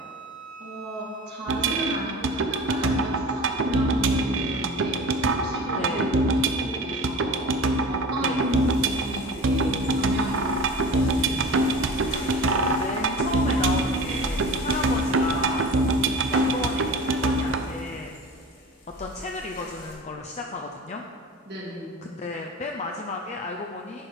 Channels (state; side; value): normal; both; correlation 0.37